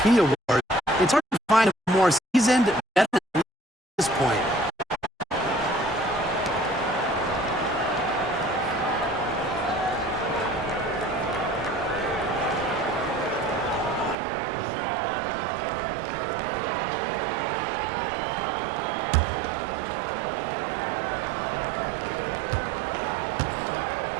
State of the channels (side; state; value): left; drops out; at 14.2 s